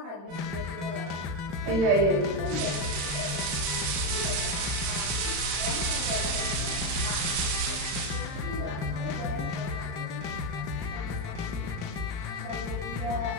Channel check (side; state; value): left; late; 35 ms